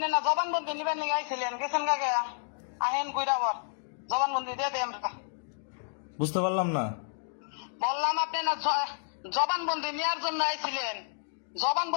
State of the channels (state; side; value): silent; right; digital silence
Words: না জবানবন্দি নিবেন নিয়ে আইছিলেন, গেছেন কাকে? আহেন কইরা বল, জবানবন্দি দিয়ে দেন। বুঝতে পারলাম না। বললাম আপনি না জবানবন্দি নেওয়ার জন্য আইছিলেন,